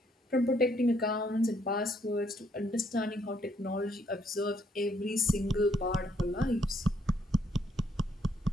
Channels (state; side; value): normal; both; correlation 0.69